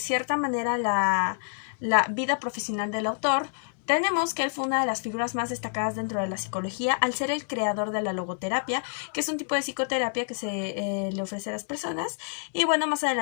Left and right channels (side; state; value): right; silent; digital silence